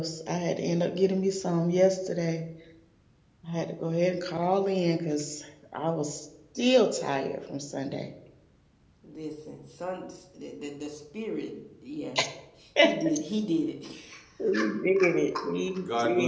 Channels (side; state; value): both; identical; correlation 1.00